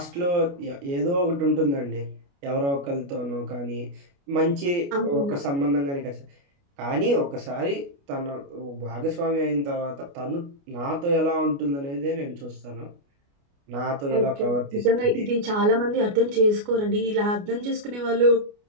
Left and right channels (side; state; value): left; late; 29 ms